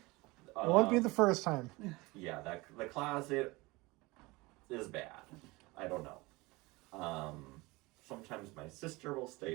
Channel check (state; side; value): quieter; left; 23.0 dB